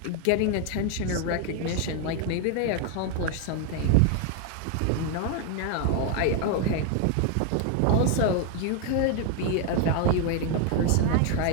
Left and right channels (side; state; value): both; different; correlation 0.01